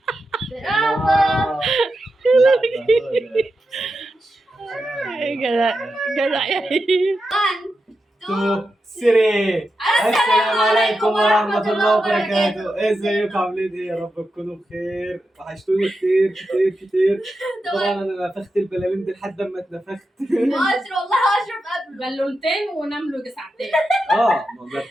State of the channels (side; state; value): both; normal; correlation 0.89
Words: برافو. جدع جدع يا هيم. 2 3. السلام عليكم ورحمة الله وبركاته. ازيكم عاملين ايه؟ يا رب تكونوا بخير. وحشتوني كتير كتير كتير. طبعا انا نفخت البلالين دي لحد ما اتنفخت. اشرف والله اشرف قبله بالونتين ونام له ساعتين. ما